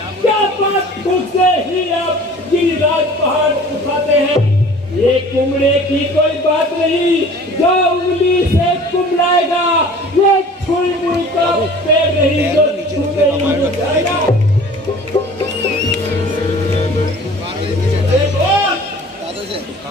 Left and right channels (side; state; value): both; normal; correlation 0.46